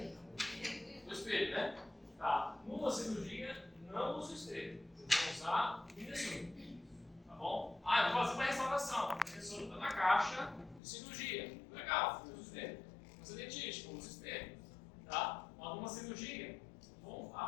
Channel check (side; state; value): right; drops out; at 10.8 s